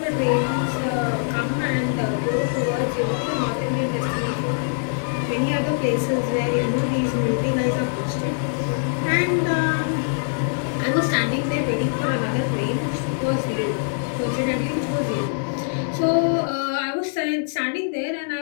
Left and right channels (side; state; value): right; silent; digital silence